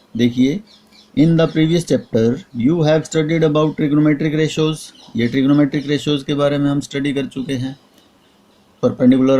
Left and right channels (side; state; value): both; identical; correlation 1.00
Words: देखिए, in the previous chapter you have studied about trigonometric ratios. ये ट्रिग्नोमेट्रिक रेशोज के बारे में हम स्टडी कर चुके हैं.